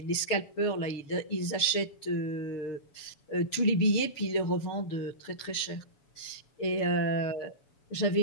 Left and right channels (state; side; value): late; right; 7.0 ms